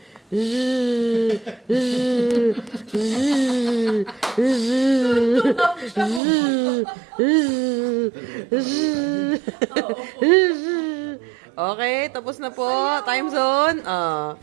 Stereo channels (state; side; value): drops out; left; at 6.2 s